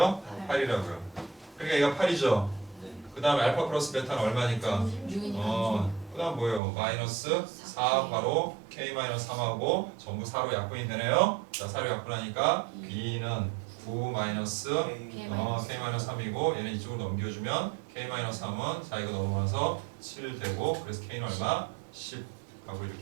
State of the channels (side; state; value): left; drops out; at 6.6 s